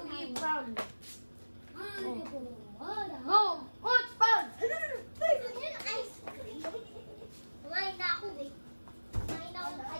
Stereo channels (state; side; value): inverted; both; correlation -1.00